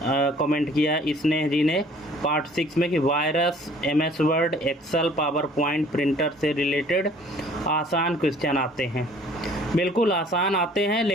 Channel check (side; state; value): both; normal; correlation 0.54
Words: कमेंट किया स्नेह जी ने पार्ट 6 में कि virus, MS Word, Excel, PowerPoint, printer से रिलेटेड आसान क्वेश्चन आते हैं। बिल्कुल आसान आते हैं,